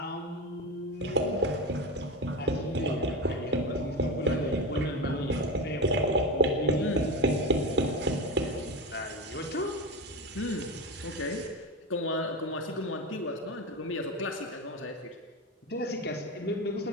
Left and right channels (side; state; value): both; normal; correlation 0.21